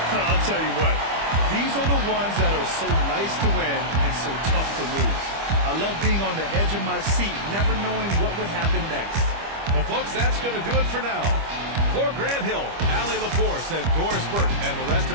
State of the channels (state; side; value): late; left; 25 ms